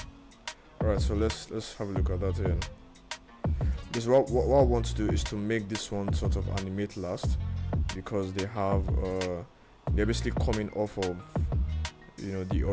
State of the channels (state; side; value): identical; both; correlation 1.00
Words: Alright, so let's have a look at that here. Because what I want to do is to make this one sort of animate last, because they have they're basically coming off of the